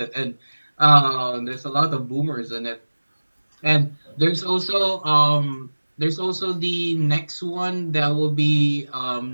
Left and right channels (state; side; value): inverted; both; correlation -1.00